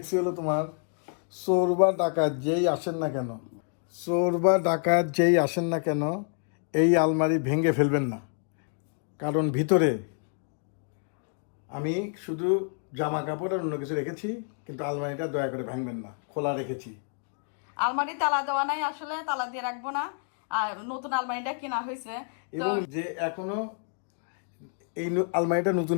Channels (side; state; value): right; silent; 59 dB below the other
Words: হলো তোমার, চোর বা ডাকাত যেই আসেন না কেন, চোর বা ডাকাত যেই আসেন না কেন এই আলমারি ভেঙে ফেলবেন না, কারণ ভিতরে আমি শুধু জামা কাপড় আর অন্য কিছু রেখেছি, কিন্তু আলমারিটা দয়া করে ভাঙবেন না, খোলা রেখেছি। আলমারি তালা দেওয়া নাই, আসলে তালা দিয়ে রাখবো না। আর নতুন আলমারিটা কেনা হয়েছে এবং যে এখনো এই আলমারিটা নতুন